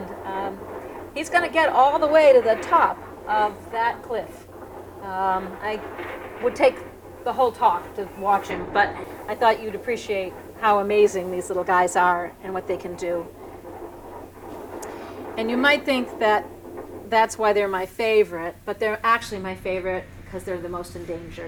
He's going to get all the way to the top of that cliff. I would take the whole talk to watch him, but I thought you'd appreciate how amazing these little guys are and what they can do. And you might think that that's why they're my favorite, but they're actually my favorite because they're the most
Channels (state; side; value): identical; both; correlation 1.00